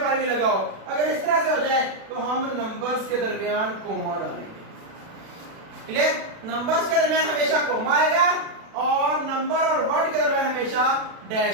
भी लगा हो, अगर इस तरह से हो जाए तो हम नंबर्स के दरमियान कोमा डालेंगे। क्लियर? नंबर्स के दरमियान हमेशा कोमा आएगा, और नंबर और वर्ड के दरमियान हमेशा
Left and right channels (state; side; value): late; left; 36 ms